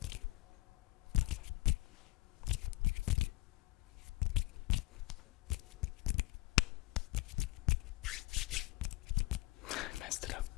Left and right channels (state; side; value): quieter; right; 20.9 dB